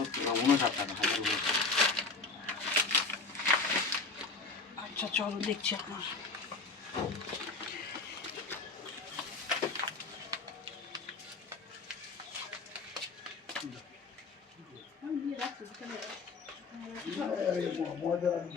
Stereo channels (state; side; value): quieter; right; 3.9 dB